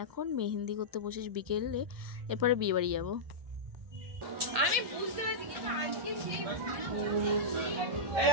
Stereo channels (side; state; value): left; late; 1.9 ms